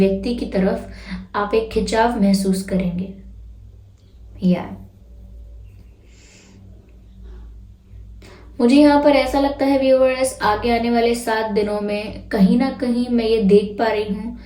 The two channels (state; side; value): identical; both; correlation 1.00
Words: की तरफ आप एक खिंचाव महसूस करेंगे। मुझे यहाँ पर ऐसा लगता है व्यूअर्स, आगे आने वाले 7 दिनों में कहीं ना कहीं मैं ये देख पा रही हूँ